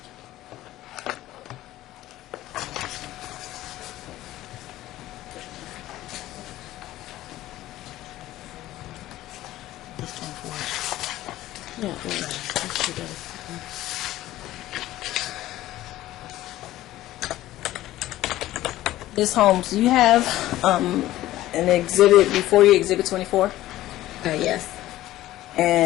Yeah, let's do that. Ms. Holmes, do you have an exhibit before you, Exhibit 24? Yes.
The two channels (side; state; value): right; quieter; 15.2 dB